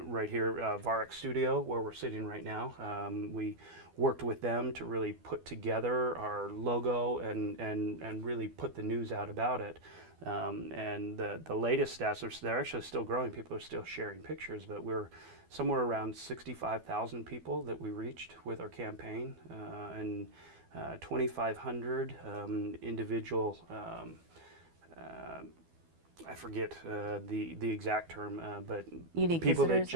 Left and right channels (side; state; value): left; late; 12 ms